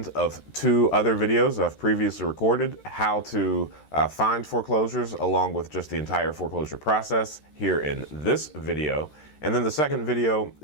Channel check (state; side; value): late; right; 13 ms